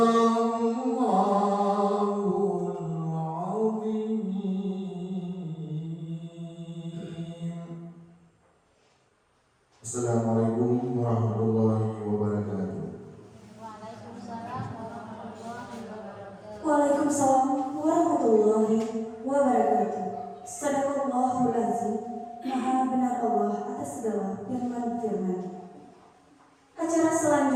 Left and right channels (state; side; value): identical; both; correlation 1.00